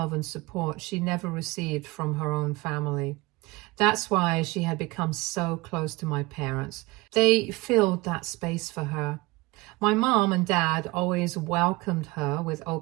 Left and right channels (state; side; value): quieter; left; 22.0 dB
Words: and support she never received from her own family. That's why she had become so close to my parents. They filled that space for her. My mom and dad always welcomed her with